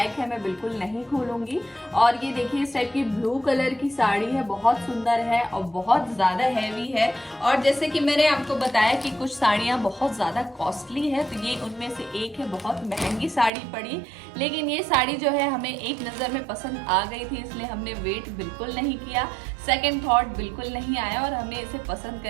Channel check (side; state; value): left; drops out; at 13.5 s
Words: है, मैं बिल्कुल नहीं खोलूंगी। और ये देखिए इस टाइप की ब्लू कलर की साड़ी है, बहुत सुंदर है और बहुत ज्यादा हैवी है। और जैसे कि मैंने आपको बताया कि कुछ साड़ियां बहुत ज्यादा कॉस्टली है, तो ये उनमें से एक है, बहुत महंगी साड़ी पड़ी। लेकिन ये साड़ी जो है हमें एक नजर में पसंद आ गई थी, इसलिए हमने वेट बिल्कुल नहीं किया, सेकेंड थॉट बिल्कुल नहीं आया और हमने इसे पसंद